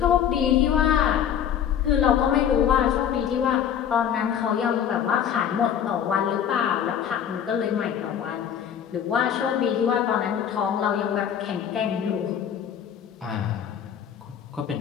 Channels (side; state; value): right; quieter; 9.0 dB